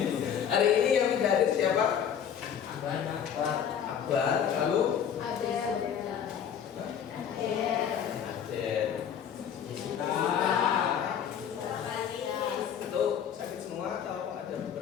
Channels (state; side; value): quieter; right; 8.5 dB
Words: Hari ini yang tidak hadir siapa? Akbar, lalu? Adel. Itu sakit semua atau ada